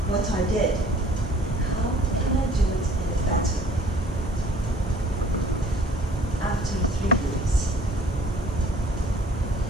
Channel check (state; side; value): normal; both; correlation 0.54